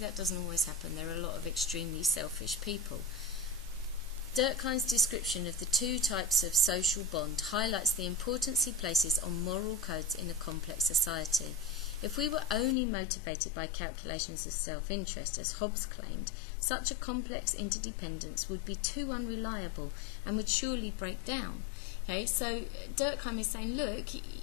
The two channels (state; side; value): drops out; right; at 12.8 s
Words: doesn't always happen. There are a lot of extremely selfish people. Durkheim's description of the two types of social bond highlights the importance he places on moral codes in a complex society. If we were only motivated by calculations of self-interest, as Hobbes claimed, such a complex interdependence would be too unreliable and would surely break down. Okay, so Durkheim is saying, look,